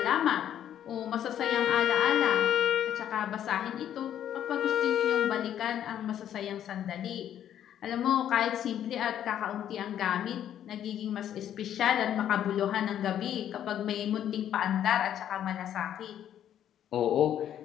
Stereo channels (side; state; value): right; quieter; 10.5 dB